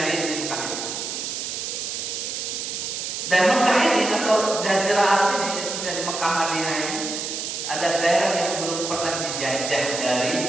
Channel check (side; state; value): right; noise; hiss, 4 dB below the sound